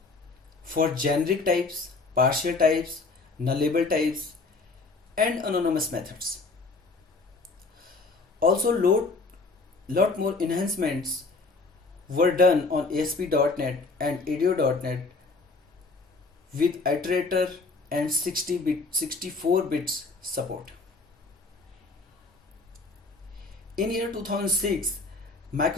for generic types, partial types, nullable types, and anonymous methods. Also, lot more enhancements were done on ASP.NET and ADO.NET with iterator and 64 bits support. In year 2006,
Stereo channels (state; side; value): quieter; right; 3.8 dB